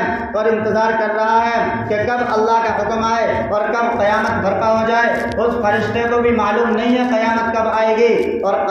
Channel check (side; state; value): both; identical; correlation 1.00